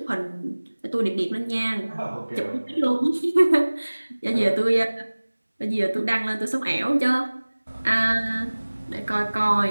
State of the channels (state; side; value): inverted; both; correlation -1.00